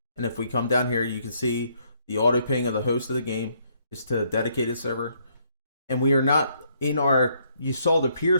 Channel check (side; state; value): both; inverted; correlation -0.70